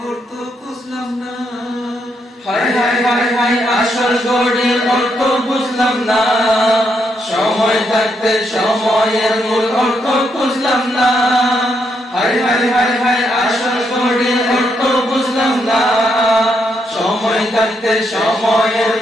অর্থ বুঝলাম না। হায় হায় হায় হায় আসল ঘড়ির অর্থ বুঝলাম না, সময় থাকতে সময়ের মূল অর্থ বুঝলাম না। হায় হায় হায় হায় আসল ঘড়ির অর্থ বুঝলাম না, সময় থাকতে সময়ের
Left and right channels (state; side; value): normal; both; correlation 0.78